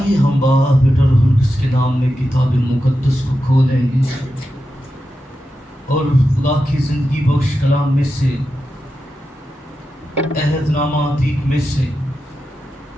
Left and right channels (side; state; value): both; normal; correlation 0.90